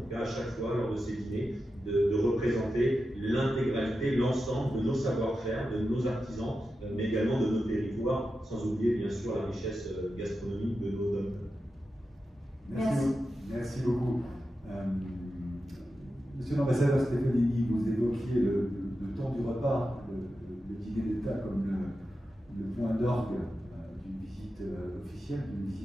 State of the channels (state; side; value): normal; both; correlation 0.91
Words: tout cas à chaque fois, lors de ces dîners, de représenter l'intégralité, l'ensemble de nos savoir-faire, de nos artisans, mais également de nos territoires, sans oublier bien sûr la richesse gastronomique de nos domaines. Merci beaucoup. Monsieur l'ambassadeur Stefanini, vous évoquiez le temps du repas, le dîner d'État comme le point d'orgue d'une visite officielle, d'une